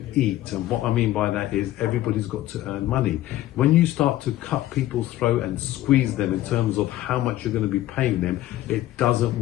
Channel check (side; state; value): right; quieter; 14.6 dB